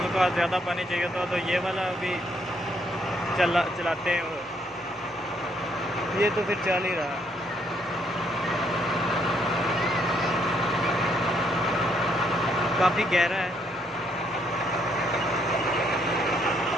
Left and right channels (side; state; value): both; normal; correlation 0.71